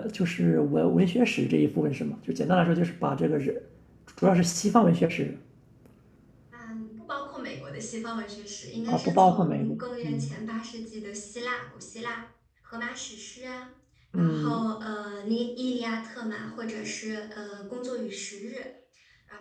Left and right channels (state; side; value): identical; both; correlation 1.00